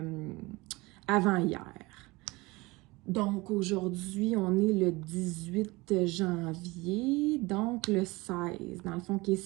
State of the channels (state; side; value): quieter; left; 22.7 dB